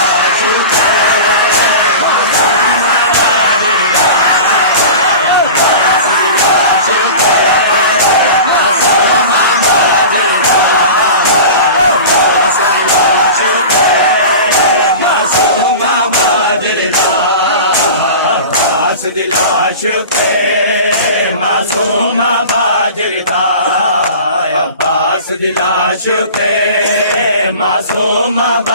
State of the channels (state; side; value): inverted; both; correlation -0.35